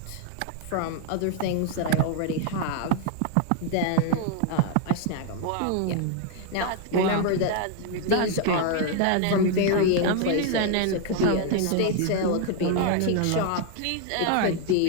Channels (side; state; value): both; different; correlation 0.00